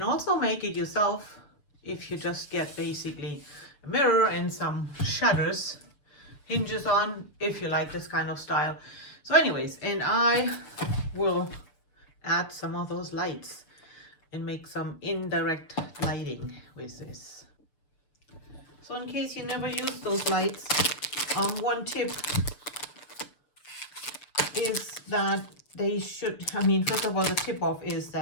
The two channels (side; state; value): right; late; 6.8 ms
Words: also make it yourself if you just get basically a mirror and some shutters, hinges on, if you like this kind of style. So anyways, and I will add some of those lights and make some indirect lighting with this. So in case you never use those lights, one tip is that they should, first of all, the tip off is